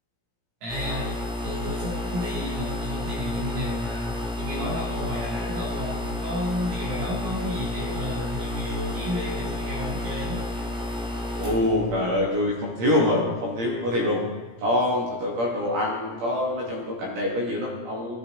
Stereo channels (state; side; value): late; left; 17 ms